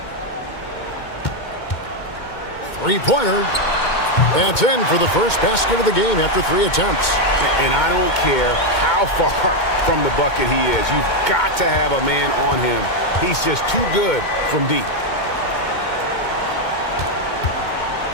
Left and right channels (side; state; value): right; late; 2.2 ms